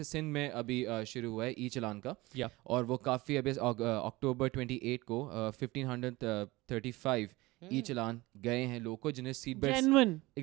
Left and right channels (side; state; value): left; quieter; 20.8 dB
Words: सिंध में अभी शुरू हुआ है ई चलान का, Yeah. और वो काफ़ी अभी अक्टूबर 28 को 1535 ई चलान गए हैं लोगों को जिन्हें seat belt genuine,